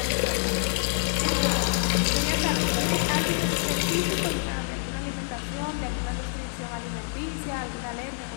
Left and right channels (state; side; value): silent; right; 57 dB below the other